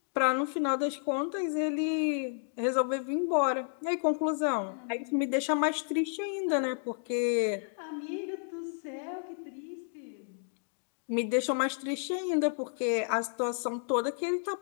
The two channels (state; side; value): silent; right; digital silence